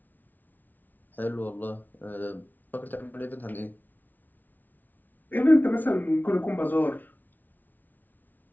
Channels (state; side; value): late; right; 0.083 ms